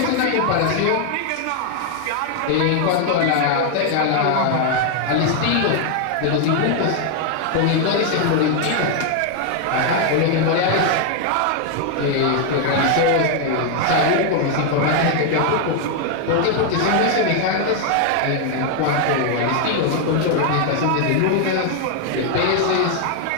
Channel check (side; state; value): both; different; correlation 0.00